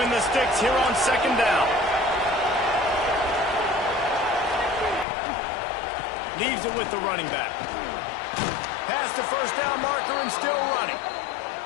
the sticks here on 2nd down. Leaves it with the running back. Past the first down marker and still running.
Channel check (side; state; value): right; drops out; at 5.1 s